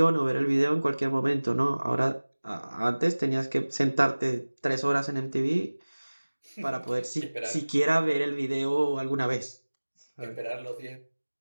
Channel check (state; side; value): inverted; both; correlation -1.00